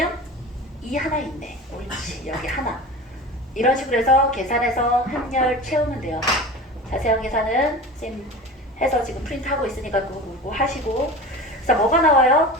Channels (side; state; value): both; normal; correlation 0.33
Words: 2 하나 있네. 옳지. 여기 하나. 이런 식으로 해서 계산해서 행렬 채우면 돼요. 자세한 계산은 쌤 해서 지금 프린트하고 있으니까 그거 보고 하시고. 그래서 뭐가 나와요?